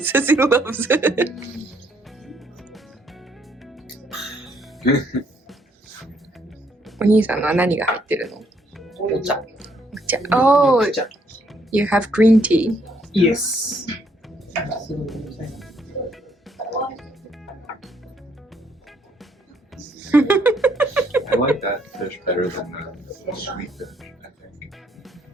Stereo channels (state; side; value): normal; both; correlation 0.70